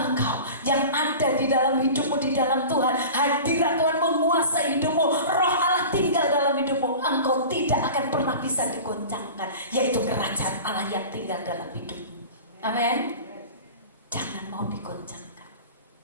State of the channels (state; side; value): inverted; both; correlation -0.36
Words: yang ada di dalam hidupmu, di dalam Tuhan, hadirat Tuhan menguasai hidupmu, Roh Allah tinggal dalam hidupmu, engkau tidak akan pernah bisa digoncangkan, yaitu kerajaan Allah yang tinggal dalam hidupmu. Amin. Jangan mau digoncangkan.